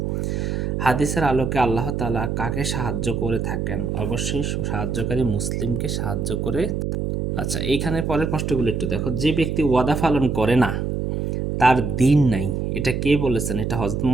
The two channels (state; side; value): noise; right; hum, 1 dB below the sound